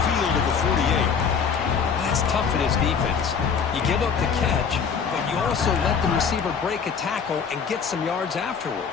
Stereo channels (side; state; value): right; quieter; 6.4 dB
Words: at the 48. That's tough for this defense. You give up the catch, but you also let the receiver break a tackle and get some yards afterward.